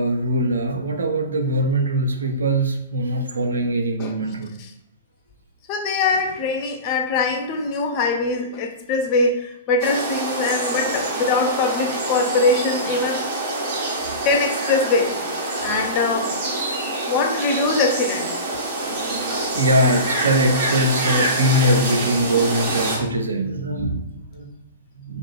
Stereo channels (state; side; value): inverted; both; correlation -0.32